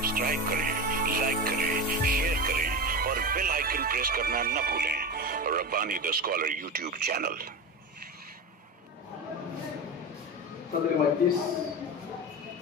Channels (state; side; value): normal; both; correlation 0.24